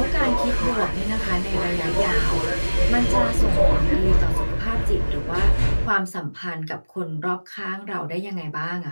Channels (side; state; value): both; inverted; correlation -1.00